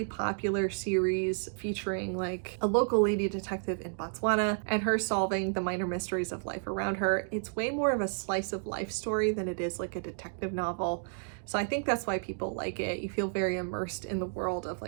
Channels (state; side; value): silent; left; digital silence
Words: popular series featuring a local lady detective in Botswana and her solving the minor mysteries of life around her. It's way more of a slice of life story than it is a detective novel. So I think that's why people like it. You feel very immersed in the world of